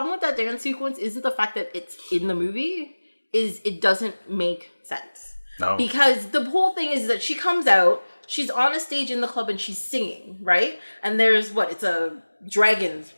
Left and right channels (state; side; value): inverted; both; correlation -1.00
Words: with that dance sequence isn't the fact that it's in the movie, is it doesn't make sense. No. Because the whole thing is that she comes out, she's on a stage in the club and she's singing, right? And there's it's a dragon's